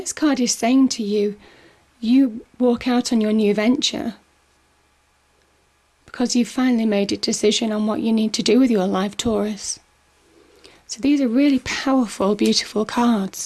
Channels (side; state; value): both; identical; correlation 1.00